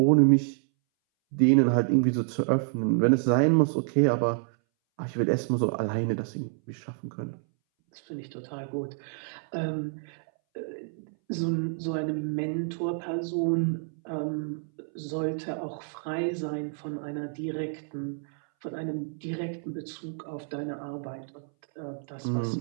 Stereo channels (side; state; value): left; silent; 59 dB below the other